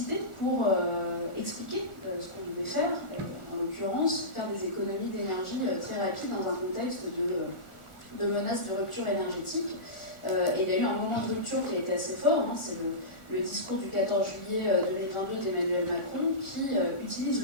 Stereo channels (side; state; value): right; late; 1.4 ms